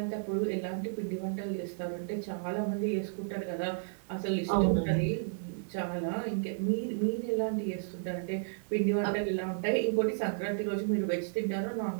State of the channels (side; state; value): left; silent; 56 dB below the other